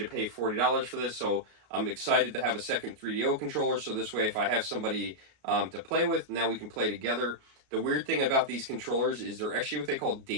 pay $40 for this. So I'm excited to have a second 3DO controller. So this way, if I have somebody to play with, now we can play together. The weird thing about these controllers is they're actually what they call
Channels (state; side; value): late; left; 33 ms